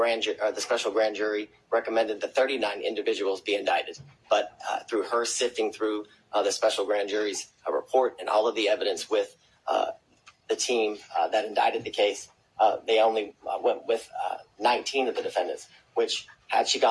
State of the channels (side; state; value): both; identical; correlation 1.00